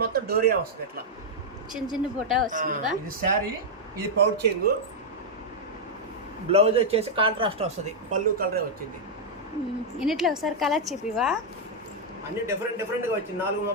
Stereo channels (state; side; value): normal; both; correlation -0.04